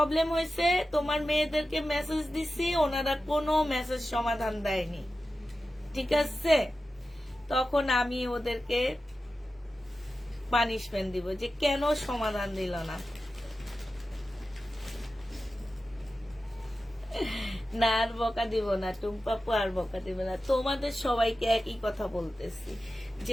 হয়েছে, তোমার মেয়েদেরকে মেসেজ দিছি, ওনারা কোনো মেসেজ সমাধান দেয়নি, ঠিক আছে? তখন আমি ওদেরকে পানিশমেন্ট দিব যে কেন সমাধান দিল না। না, আর বকা দিব না টুম্পাপু, আর বকা দিব না। তোমাদের সবাইকে একই কথা বলতেছি,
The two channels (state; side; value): normal; both; correlation 0.93